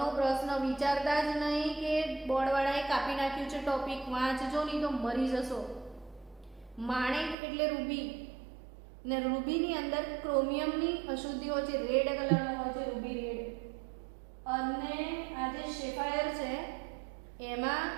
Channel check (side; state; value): left; drops out; at 7.4 s